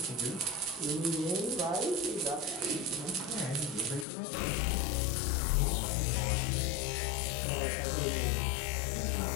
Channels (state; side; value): drops out; right; at 4.0 s